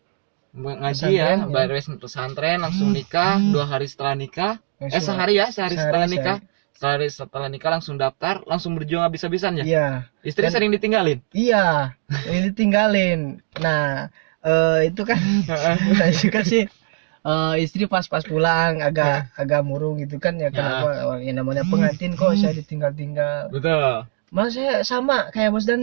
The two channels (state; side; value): silent; left; 65 dB below the other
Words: ngaji ya, beres pesantren, langsung nikah, 2 hari setelah nikah, sehari setelah nikah. Setelah nikah langsung daftar, langsung berjuang habis-habisan ya? Iya. Istri sering ditinggalin? Iya, ini ditinggalin. Nah, itu kan saya juga sih, istri pas pulang agak murung gitu kan ya, kenapa yang namanya pengantin kok saya ditinggal-tinggal. Betul. Malah saya sama kayak Bos